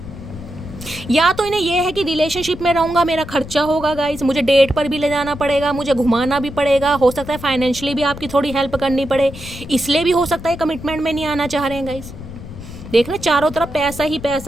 या तो इन्हें यह है कि रिलेशनशिप में रहूँगा, मेरा खर्चा होगा गाइस, मुझे डेट पर भी ले जाना पड़ेगा, मुझे घुमाना भी पड़ेगा, हो सकता है फाइनेंशियली भी आपकी थोड़ी हेल्प करनी पड़े, इसलिए भी हो सकता है कमिटमेंट में नहीं आना चाह रहे हैं गाइस। देखना चारों तरफ पैसा ही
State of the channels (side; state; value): left; noise; rumble, 13 dB below the sound